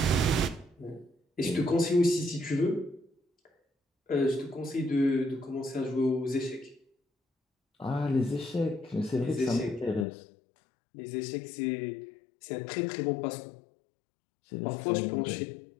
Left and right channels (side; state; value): right; drops out; at 10.1 s